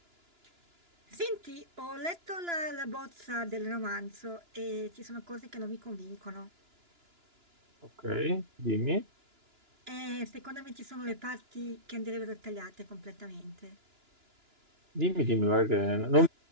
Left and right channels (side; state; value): left; late; 2.9 ms